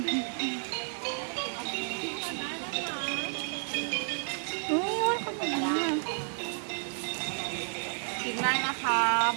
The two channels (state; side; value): silent; left; digital silence